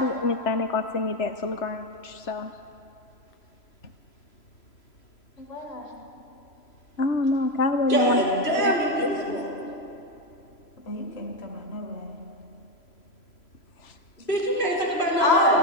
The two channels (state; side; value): late; right; 3.0 ms